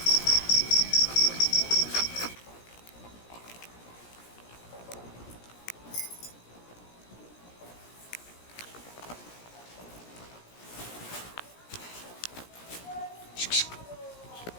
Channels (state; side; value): late; right; 17 ms